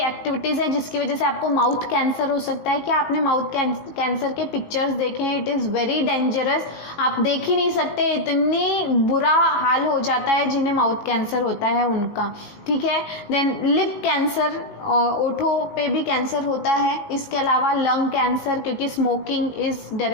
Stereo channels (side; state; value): right; late; 18 ms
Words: हैं जिसकी वजह से आपको माउथ कैंसर हो सकता है। क्या आपने माउथ कैंसर के पिक्चर्स देखे हैं? इट इज़ वेरी डेंजरस, आप देख ही नहीं सकते, इतनी बुरा हाल हो जाता है जिन्हें माउथ कैंसर होता है उनका, ठीक है। देन लिप कैंसर, ओठों पे भी कैंसर होता है। इसके अलावा लंग कैंसर, क्योंकि smoking is